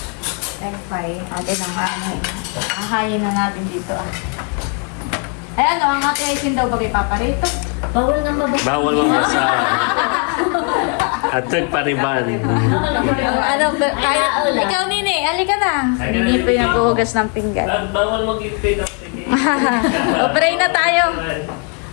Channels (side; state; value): right; quieter; 36.8 dB